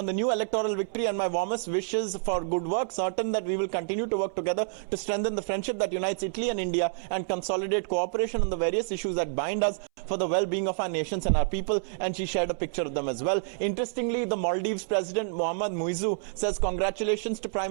the new electoral victory and my warmest wishes for good work. Certain that we will continue to work together to strengthen the friendship that unites Italy and India and consolidate cooperation on the various issues that bind us for the well-being of our nations and our people. And she shared a picture of them as well. Interestingly, the Maldives President Mohammad Muizzu says congratulations to Prime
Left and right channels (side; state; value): left; silent; 59 dB below the other